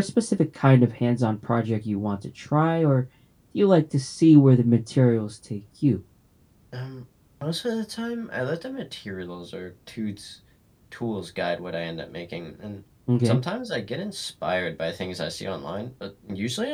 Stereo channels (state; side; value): identical; both; correlation 1.00